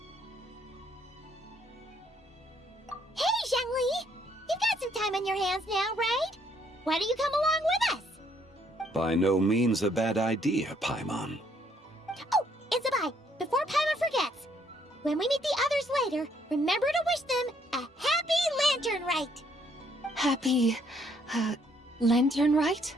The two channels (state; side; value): normal; both; correlation 0.69